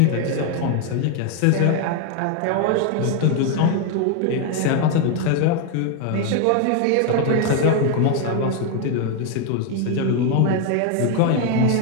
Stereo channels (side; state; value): both; different; correlation 0.01